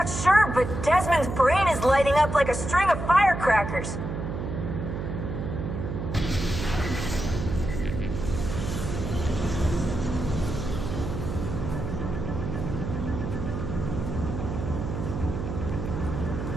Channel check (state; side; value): noise; right; hum, 5 dB below the sound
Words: sure, but Desmond's brain is lighting up like a string of firecrackers.